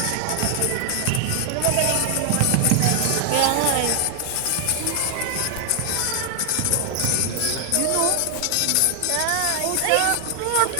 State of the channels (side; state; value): both; different; correlation 0.00